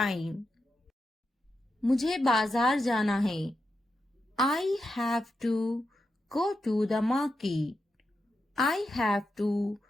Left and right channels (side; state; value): both; normal; correlation 0.86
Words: मुझे बाजार जाना है, I have to go to the market, I have to